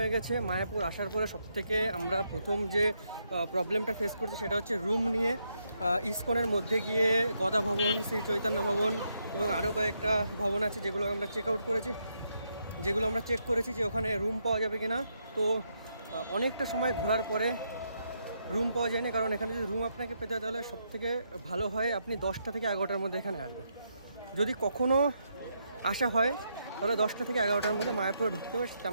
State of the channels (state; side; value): inverted; both; correlation -0.79